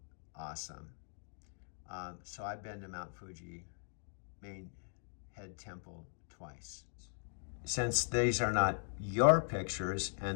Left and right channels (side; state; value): right; silent; digital silence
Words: awesome. So I've been to Mount Fuji main head temple twice. Since these are not your pictures